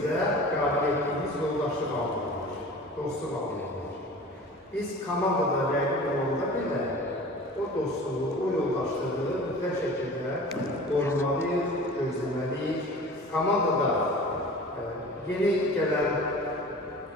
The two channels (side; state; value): both; normal; correlation 0.40